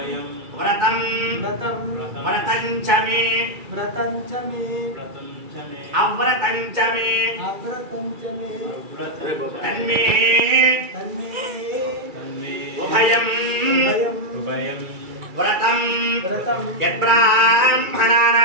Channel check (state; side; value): late; left; 2.3 ms